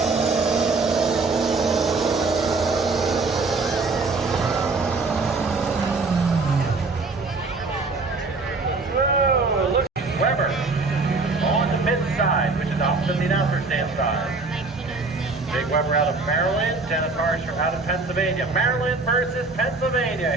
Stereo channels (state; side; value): quieter; left; 3.8 dB